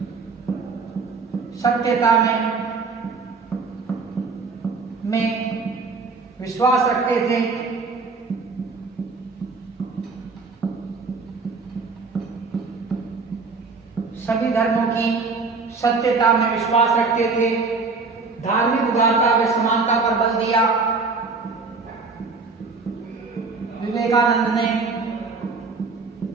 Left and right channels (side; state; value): left; quieter; 4.3 dB